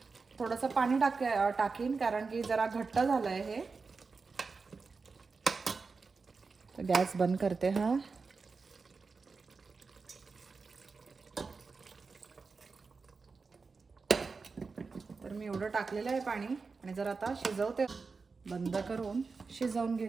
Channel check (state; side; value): quieter; left; 4.5 dB